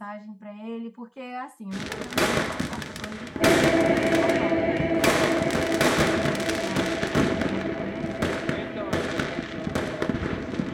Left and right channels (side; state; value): both; identical; correlation 1.00